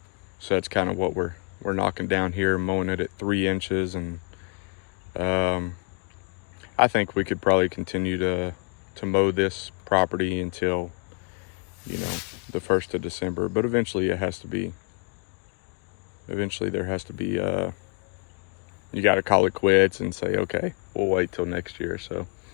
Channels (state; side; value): quieter; right; 37.8 dB